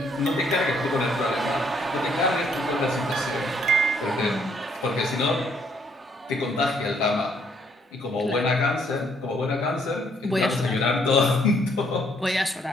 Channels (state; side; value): normal; both; correlation 0.68